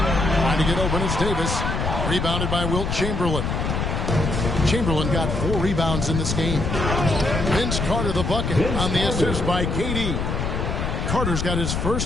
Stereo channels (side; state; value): left; noise; rumble, 1 dB below the sound